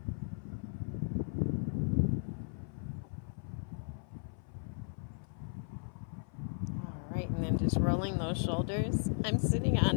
Right, and then just rolling those shoulders. I'm sitting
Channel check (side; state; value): right; silent; 54 dB below the other